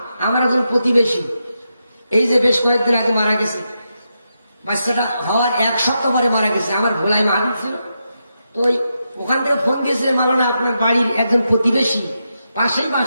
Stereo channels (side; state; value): both; inverted; correlation -0.86